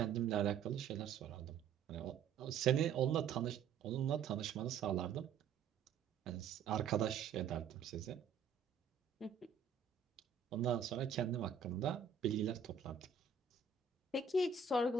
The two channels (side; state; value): left; quieter; 6.5 dB